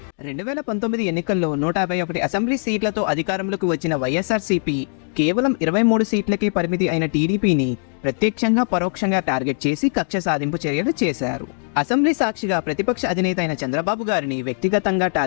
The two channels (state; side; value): silent; right; digital silence